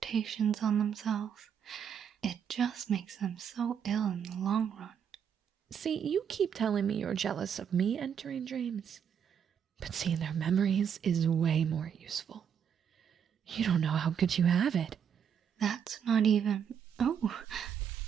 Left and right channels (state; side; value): quieter; left; 7.9 dB